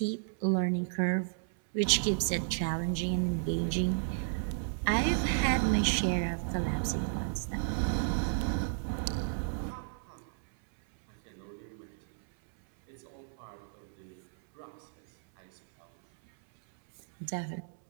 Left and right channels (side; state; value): left; silent; 56 dB below the other